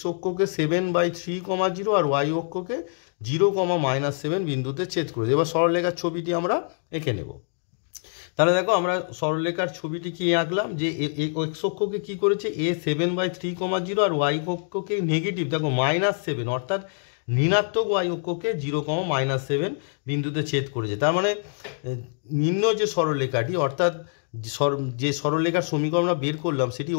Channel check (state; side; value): silent; right; digital silence